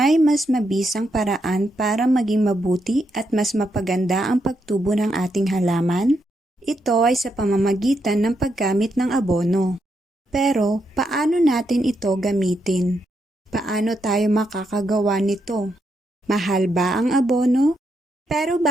mas mabisang paraan para maging mabuti at mas mapaganda ang pagtubo ng ating halaman? Ito ay sa pamamagitan ng paggamit ng abono. Pero paano natin ito gamitin? Paano tayo makakagawa nito? Mahal ba ang abono? Pero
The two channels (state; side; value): normal; both; correlation 0.81